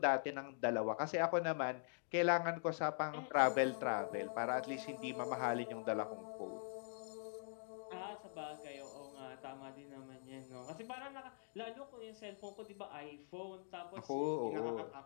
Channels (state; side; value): silent; right; digital silence